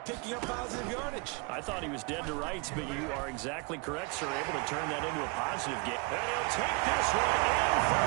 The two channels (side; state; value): left; quieter; 30.0 dB